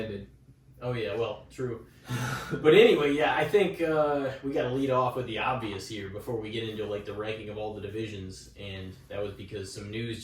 Oh yeah, well, true. But anyway, yeah, I think we got to lead off with the obvious here before we get into like the ranking of all the divisions, and that was because some news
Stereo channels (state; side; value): identical; both; correlation 1.00